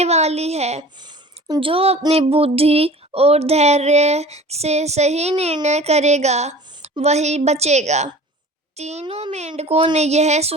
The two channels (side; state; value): both; normal; correlation 0.42